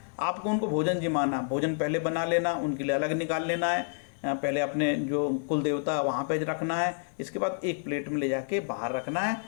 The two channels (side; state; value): right; silent; 59 dB below the other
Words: आपको उनको भोजन जिमाना, भोजन पहले बना लेना, उनके लिए अलग निकाल लेना है, पहले अपने जो कुल देवता वहाँ पे रखना है, इसके बाद एक प्लेट में ले जाके बाहर रखना है।